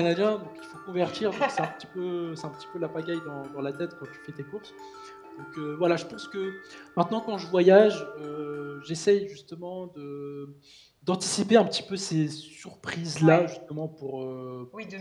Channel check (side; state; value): both; identical; correlation 1.00